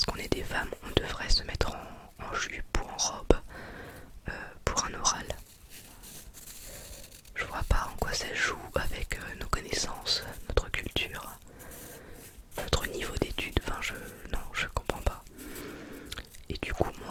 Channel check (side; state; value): both; identical; correlation 1.00